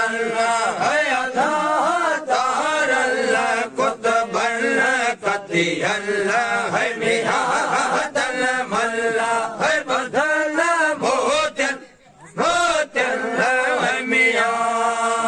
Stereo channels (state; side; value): identical; both; correlation 1.00